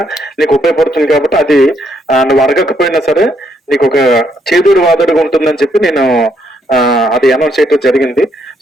నీకు ఉపయోగపడుతుంది. కాబట్టి అది నువ్వు అడగకపోయినా సరే నీకు ఒక చేదోడు వాదోడుగా ఉంటుందని చెప్పి నేను అది అనౌన్స్ చేయడం జరిగింది.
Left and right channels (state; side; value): normal; both; correlation 0.74